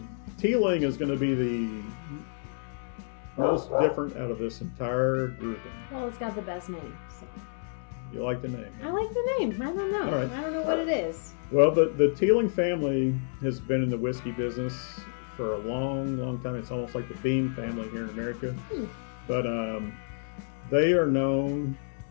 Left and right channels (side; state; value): right; silent; digital silence